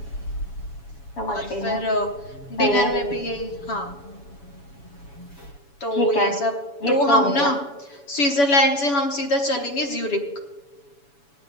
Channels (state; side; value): late; right; 7.1 ms